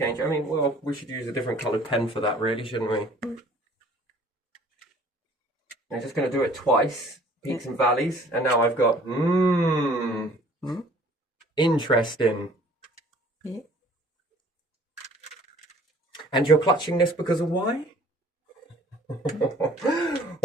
mean, well, we should use a different coloured pen for that, really, shouldn't we? I'm just going to do it twice. Peaks and valleys. And now I've got, interesting. Yeah. And you're clutching this because of why?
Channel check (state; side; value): normal; both; correlation 0.54